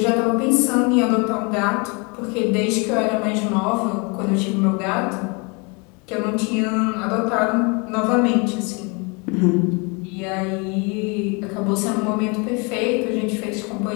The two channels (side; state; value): right; quieter; 31.1 dB